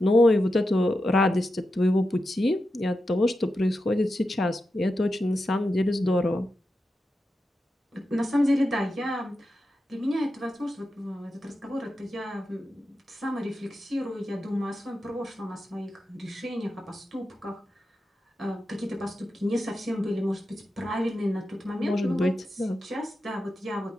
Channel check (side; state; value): both; normal; correlation 0.90